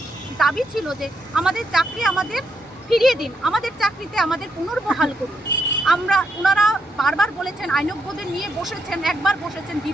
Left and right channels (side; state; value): both; normal; correlation 0.79